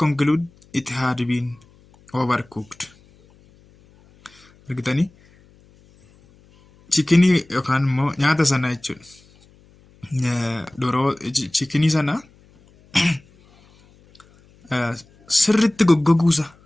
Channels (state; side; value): noise; left; hum, 29 dB below the sound